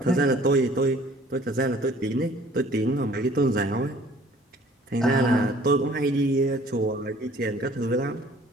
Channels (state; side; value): normal; both; correlation 0.54